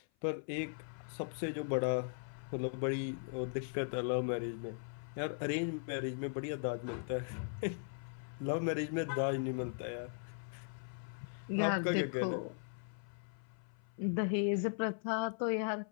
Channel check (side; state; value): right; silent; 52 dB below the other